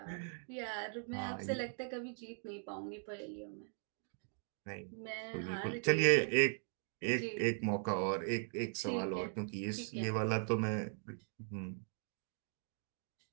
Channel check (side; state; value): left; silent; 51 dB below the other